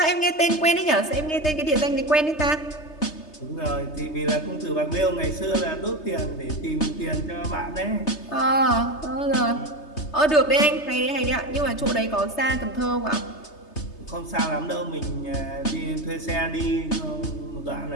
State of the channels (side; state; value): right; late; 3.3 ms